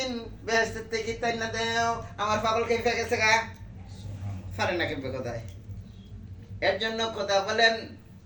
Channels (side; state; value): both; identical; correlation 1.00